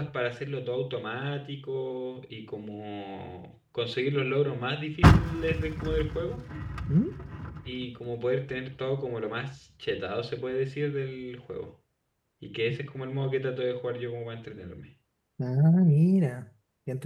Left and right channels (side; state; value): both; identical; correlation 1.00